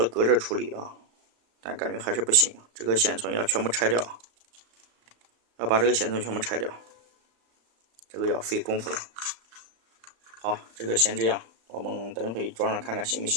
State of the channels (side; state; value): left; late; 35 ms